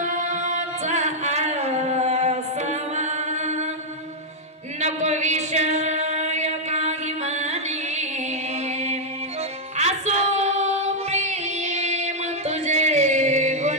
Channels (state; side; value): normal; both; correlation -0.03